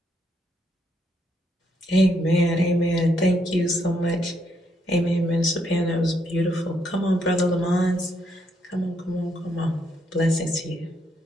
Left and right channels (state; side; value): normal; both; correlation 0.75